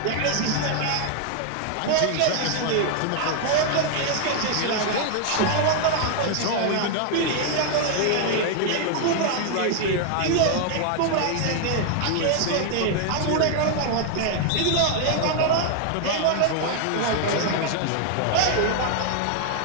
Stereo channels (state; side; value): different; both; correlation 0.00